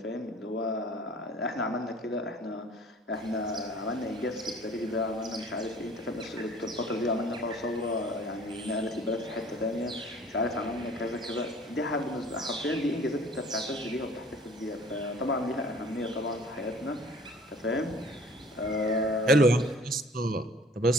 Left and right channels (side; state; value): both; normal; correlation 0.50